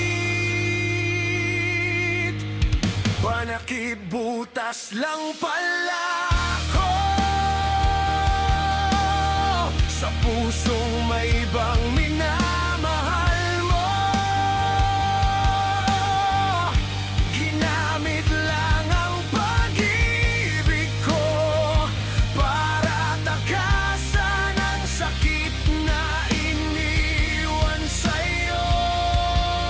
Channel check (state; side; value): identical; both; correlation 1.00